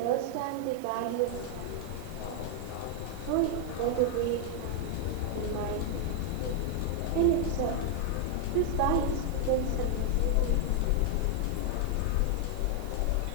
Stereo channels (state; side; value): different; both; correlation 0.00